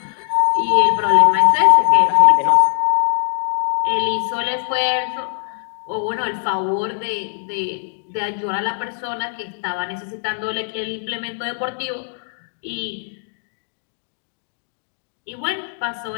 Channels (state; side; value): silent; right; digital silence